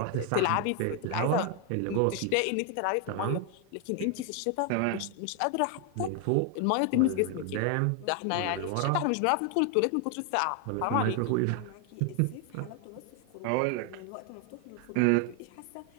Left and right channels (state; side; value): different; both; correlation 0.01